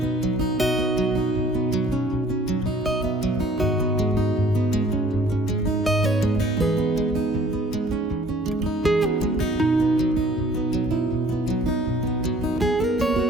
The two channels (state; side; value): normal; both; correlation 0.55